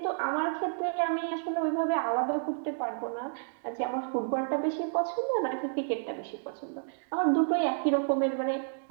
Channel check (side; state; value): left; silent; digital silence